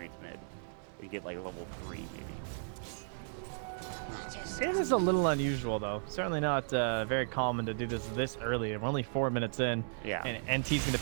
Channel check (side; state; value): left; silent; 54 dB below the other